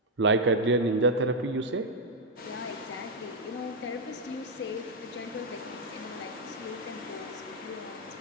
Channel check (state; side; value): normal; both; correlation -0.01